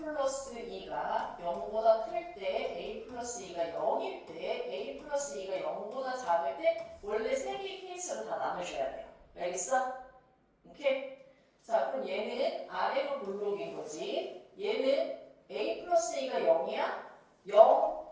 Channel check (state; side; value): identical; both; correlation 1.00